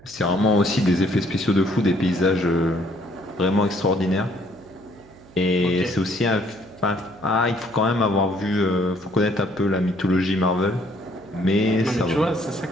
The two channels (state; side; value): noise; right; hum, 24 dB below the sound